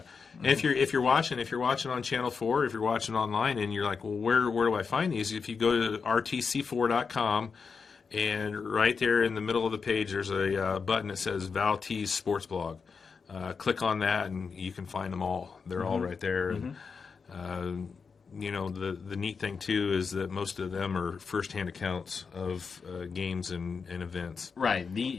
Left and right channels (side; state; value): right; quieter; 5.4 dB